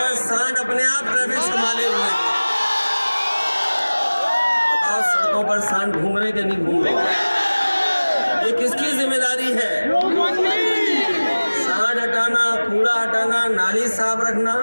अपने आप ट्रैफिक संभाले हुए हैं। बताओ, सड़कों पर सांड घूम रहे कि नहीं घूम रहे? ये किसकी जिम्मेदारी है? सांड हटाना, कूड़ा हटाना, नाली साफ रखना,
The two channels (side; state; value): both; inverted; correlation -1.00